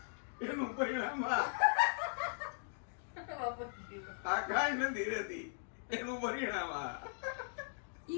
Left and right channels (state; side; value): silent; right; digital silence